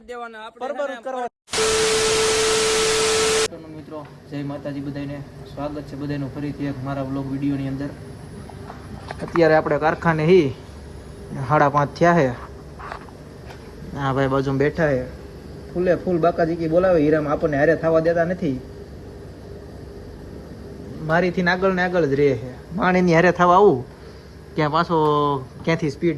દેવાના બરબર કરવા મિત્રો જય માતાજી બધાને સ્વાગત છે બધાનું ફરીથી એક મારા વ્લોગ વિડીયોની અંદર અત્યારે આપણે કારખાને 5:30 થયા છે હા ભાઈ બાજુમાં બેઠા છે ફૂલે ફૂલ બાકાજી કી બોલાવે હીરામાં આપણને હારે થવા દેતા નથી મારીથી આગળ ને આગળ જ રહે છે માણીની હારે થવા આવું ત્યાં પાછો ક્યાંથી સ્પીડ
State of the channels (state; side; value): identical; both; correlation 1.00